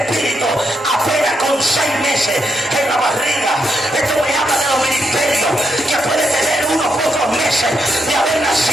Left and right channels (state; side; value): normal; both; correlation 0.80